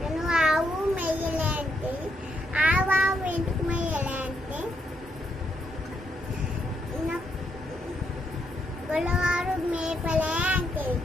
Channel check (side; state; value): both; normal; correlation 0.77